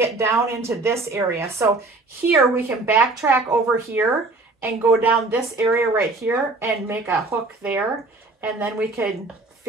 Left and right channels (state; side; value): quieter; left; 3.3 dB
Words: down into this area. So here we can backtrack over here and go down this area right here and make a hook there. And then we can